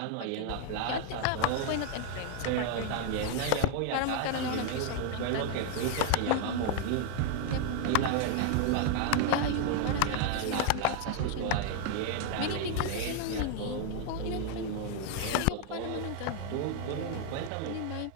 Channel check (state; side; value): different; both; correlation 0.00